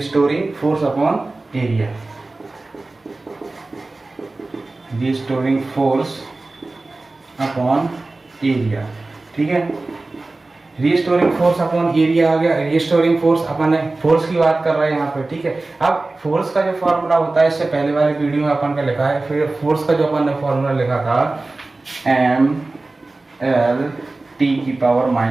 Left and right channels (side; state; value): left; quieter; 3.2 dB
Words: force upon area, restoring force upon area, ठीक है। रिस्टोरिंग फोर्स अपॉन एरिया आ गया। रिस्टोरिंग फोर्स अपन फोर्स की बात कर रहे हैं यहाँ पे, ठीक है। अब फोर्स का जो फॉर्मूला होता है इससे पहले वाले वीडियो में अपन का लिखा है, फिर फोर्स का जो अपन ने फॉर्मूला लिखा था एम एल टी की पावर